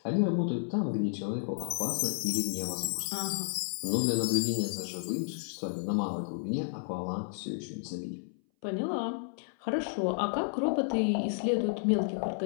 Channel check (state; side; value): silent; right; 57 dB below the other